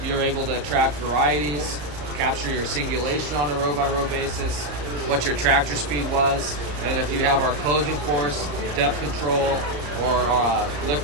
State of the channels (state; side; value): late; left; 34 ms